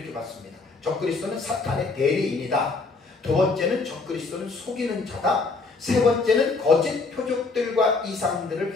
봤습니다. 적그리스도는 사탄의 대리인이다. 두 번째는 적그리스도는 속이는 자다. 세 번째는 거짓 표적들과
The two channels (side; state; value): right; quieter; 4.0 dB